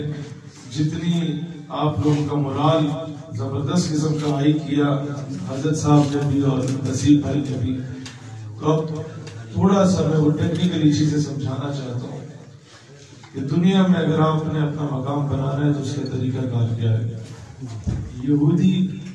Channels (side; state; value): both; identical; correlation 1.00